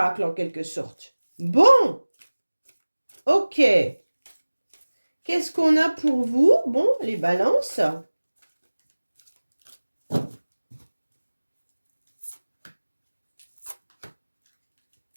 en quelque sorte. Bon. Ok. Qu'est-ce qu'on a pour vous? Bon, les balances.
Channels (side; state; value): both; inverted; correlation -1.00